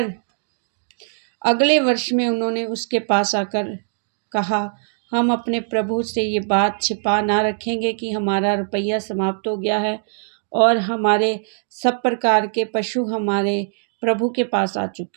अगले वर्ष में उन्होंने उसके पास आकर कहा, हम अपने प्रभु से ये बात छिपा ना रखेंगे कि हमारा रुपया समाप्त हो गया है और हमारे सब प्रकार के पशु हमारे प्रभु के पास आ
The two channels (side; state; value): left; silent; digital silence